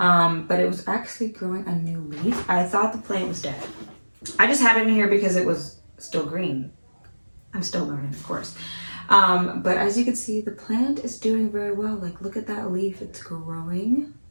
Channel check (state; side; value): inverted; both; correlation -1.00